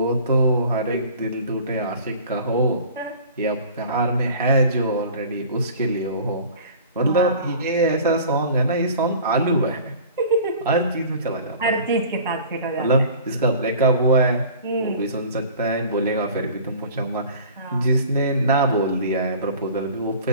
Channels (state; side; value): inverted; both; correlation -0.44